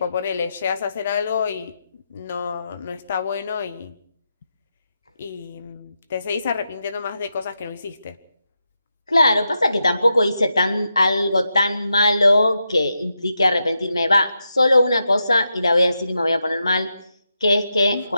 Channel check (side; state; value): both; inverted; correlation -0.86